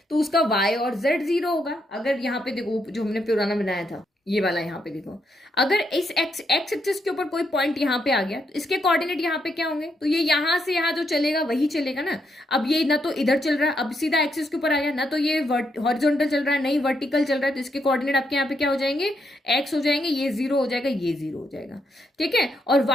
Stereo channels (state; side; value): normal; both; correlation 0.78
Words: तो उसका y और z 0 होगा। अगर यहाँ पे देखो जो हमने पुराना बनाया था ये वाला, यहाँ पे देखो, अगर इस एक्स एक्सिस के ऊपर कोई पॉइंट यहाँ पे आ गया तो इसके कोऑर्डिनेट यहाँ पे क्या होंगे, तो ये यहाँ से यहाँ जो चलेगा वही चलेगा ना। अब ये ना तो इधर चल रहा है, अब सीधा एक्सिस के ऊपर आ गया, ना तो ये हॉरिजॉन्टल चल रहा है, नहीं वर्टिकल चल रहा है, तो इसके कोऑर्डिनेट आपके यहाँ पे क्या हो जाएंगे, एक्स हो जाएंगे, ये 0 हो जाएगा, ये 0 हो जाएगा। ठीक है, और